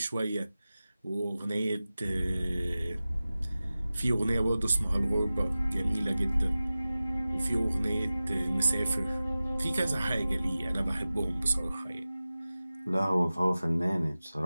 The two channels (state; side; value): inverted; both; correlation -0.96